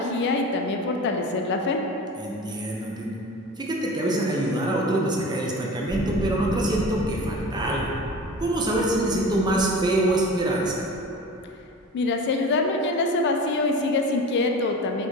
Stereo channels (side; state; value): both; normal; correlation 0.35